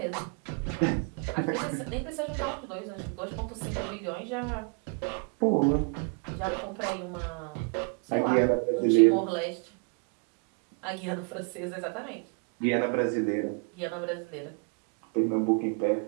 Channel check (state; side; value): quieter; left; 37.2 dB